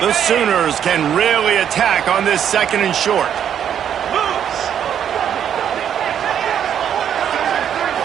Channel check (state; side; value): quieter; left; 9.1 dB